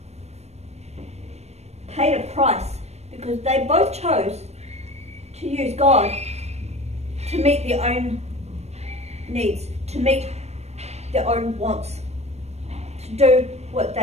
paid a price because they both chose to use God to meet their own needs, to meet their own wants, to do what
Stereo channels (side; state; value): left; late; 0.31 ms